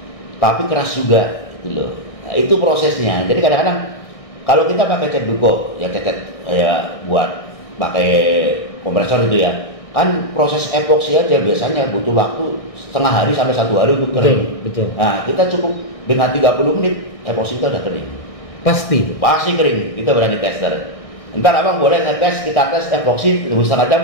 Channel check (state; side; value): late; right; 1.6 ms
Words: tapi keras juga gitu loh. Nah, itu prosesnya. Jadi kadang-kadang kalau kita pakai cat duko, ya cat buat pakai kompresor itu ya. Kan proses epoksi aja biasanya butuh waktu setengah hari sampai 1 hari untuk kering. Betul. Nah, kita cukup dengan 30 menit epoksi kita udah kering. Pasti Kering. Kita berani tester. Ntar abang boleh kita tes epoksi 1,5